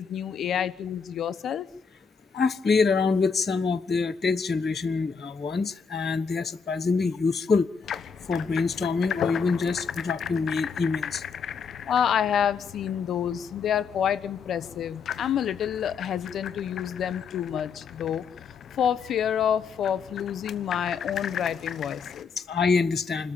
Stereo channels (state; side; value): quieter; right; 5.9 dB